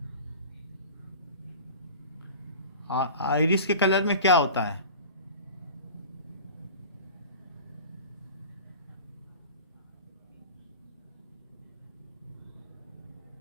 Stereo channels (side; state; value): both; inverted; correlation -0.38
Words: आइरिस के कलर में क्या होता है?